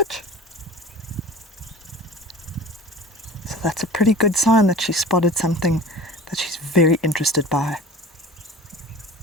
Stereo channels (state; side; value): normal; both; correlation 0.40